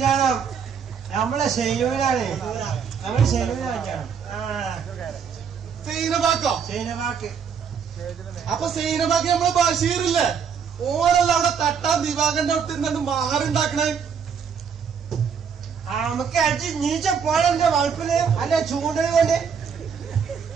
നമ്മളെ ശൈലൂരാണ് നമ്മളെ ശൈലൂര കല്യാണം സൈനബാക്കോ ശൈനവാക്ക് അപ്പൊ സൈനബാക്ക് നമ്മള് ബഷീറില്ലേ ഓരല്ല അവിടെ തട്ടാൻ ദിവാകന്റെ അടുത്ത് നിന്നു മാറുണ്ടാക്കണേ നമുക്ക് അടിച്ച് നീച്ച പോണെന്റെ വളപ്പില് അല്ല ചൂണ്ടൽ കൊണ്ട്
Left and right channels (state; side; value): quieter; left; 6.8 dB